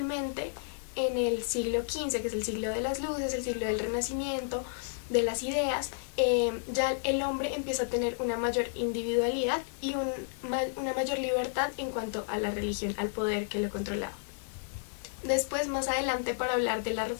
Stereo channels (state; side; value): silent; right; digital silence